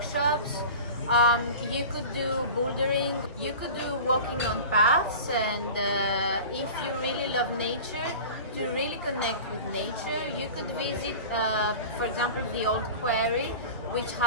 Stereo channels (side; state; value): both; inverted; correlation -0.36